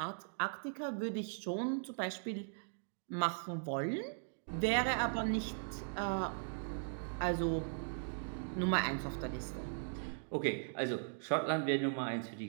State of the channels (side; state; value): left; silent; digital silence